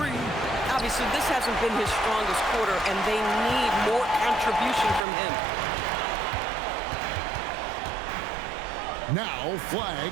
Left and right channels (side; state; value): left; drops out; at 5.1 s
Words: Obviously, this hasn't been his strongest quarter, and they need more contribution from him. Now